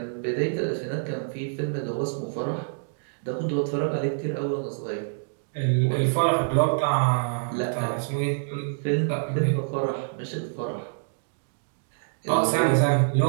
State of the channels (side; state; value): left; silent; digital silence